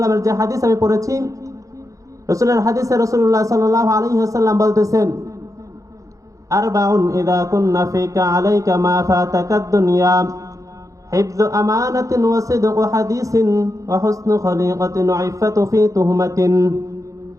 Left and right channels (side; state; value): left; late; 0.16 ms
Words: যে হাদিস আমি পড়েছি, রাসূলের হাদিসে রাসূলুল্লাহ সাল্লাল্লাহু আলাইহি ওয়াসাল্লাম বলতেছেন আরবাউন ইযা কুন্না ফিকা আলাইকা মা ফাতাকাদ দুনিয়া হিফযু আমানাতিন ওয়া সিদকু হাদিসিন ওয়া হুসনু খলিকাতিন ওয়া ইফাতু ফি তুহমাতিন।